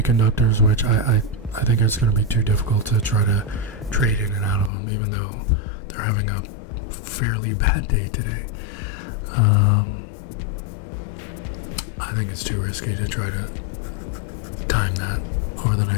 which I think it's going to be too difficult to try to trade in and out of them, even though they're having a fairly bad day today. I think it's too risky to try to time that over the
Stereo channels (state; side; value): drops out; right; at 4.7 s